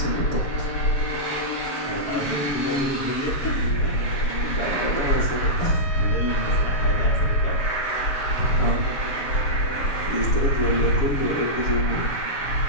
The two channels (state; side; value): late; right; 7.0 ms